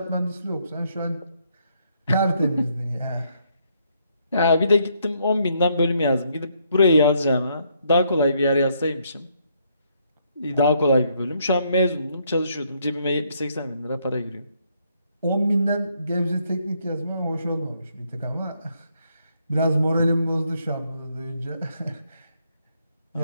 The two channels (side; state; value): both; inverted; correlation -0.72